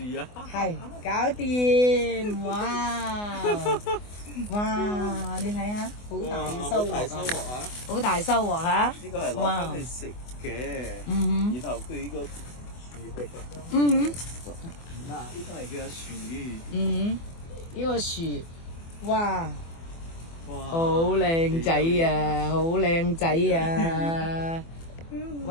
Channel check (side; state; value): right; late; 24 ms